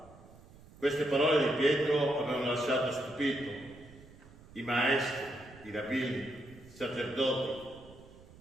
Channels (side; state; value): right; noise; rumble, 21 dB below the sound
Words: Queste parole di Pietro avevano lasciato stupito i maestri, i rabbini, i sacerdoti,